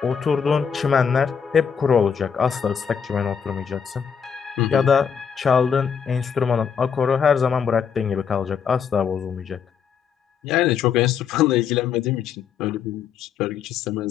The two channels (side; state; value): right; quieter; 7.0 dB